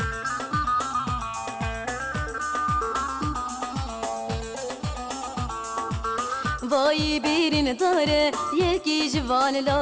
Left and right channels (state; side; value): identical; both; correlation 1.00